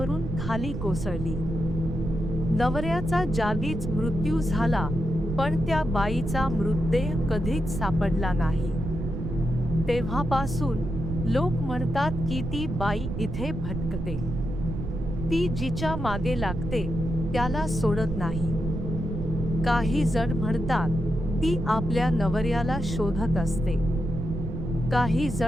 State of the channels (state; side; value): noise; right; rumble, 4 dB below the sound